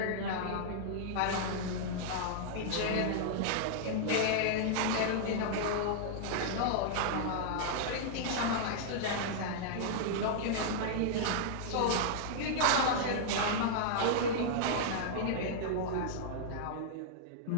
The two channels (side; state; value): both; different; correlation -0.01